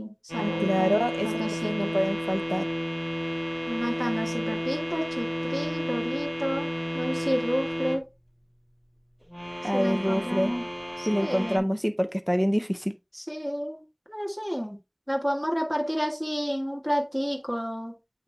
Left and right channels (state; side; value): identical; both; correlation 1.00